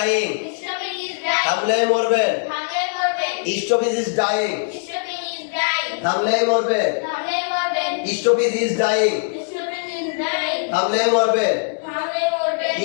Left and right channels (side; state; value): right; silent; digital silence